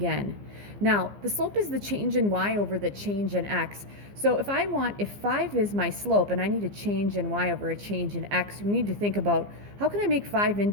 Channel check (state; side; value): late; left; 15 ms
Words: Now, the slope is the change in y over the change in x. So if 5 is my slope and I need a change in y over a change in x, we need to think about, how can I make 5